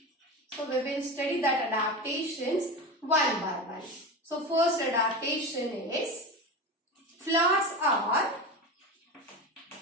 So we will study that adaptations one by one. So first adaptation is flowers are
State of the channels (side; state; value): both; normal; correlation 0.24